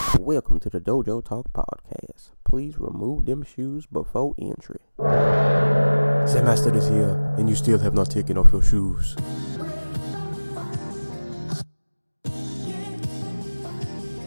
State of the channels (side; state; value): both; inverted; correlation -1.00